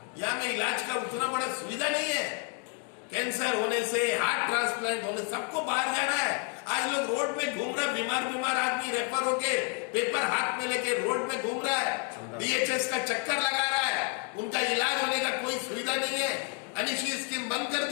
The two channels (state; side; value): quieter; right; 35.8 dB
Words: यहाँ में इलाज का उतना बड़ा सुविधा नहीं है। कैंसर होने से, हार्ट ट्रांसप्लांट होने, सबको बाहर जाना है। आज लोग रोड में घूम रहा है, बीमार आदमी रेफर होके पेपर हाथ में लेके रोड में घूम रहा है, डीएचएस का चक्कर लगा रहा है, उनका इलाज होने का कोई सुविधा नहीं है। अनिशी स्कीम बंद कर